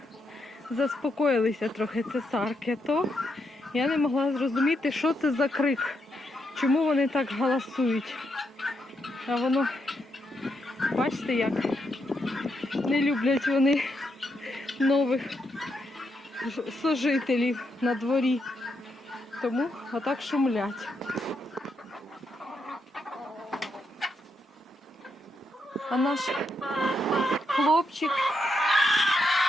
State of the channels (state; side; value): normal; both; correlation 0.80